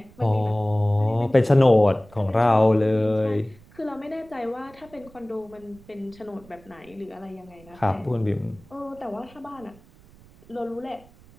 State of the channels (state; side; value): noise; right; rumble, 25 dB below the sound